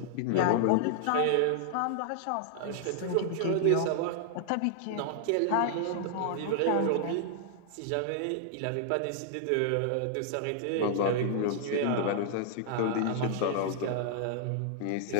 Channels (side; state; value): both; different; correlation -0.01